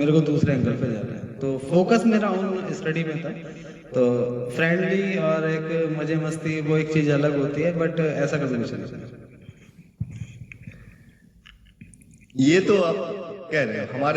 को दूसरे एंगल पे जाना है, तो फोकस मेरा ऑन स्टडी में था। तो फ्रेंडली और एक मजे मस्ती वो एक चीज़ अलग होती है, बट ऐसा कभी कुछ नहीं। ये तो आप कह रहे हो,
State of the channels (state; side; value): identical; both; correlation 1.00